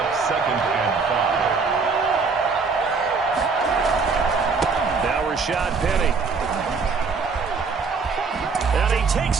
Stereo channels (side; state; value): left; quieter; 4.8 dB